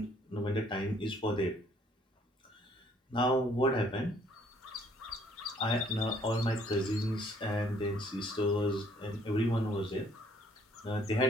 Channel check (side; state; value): both; normal; correlation 0.63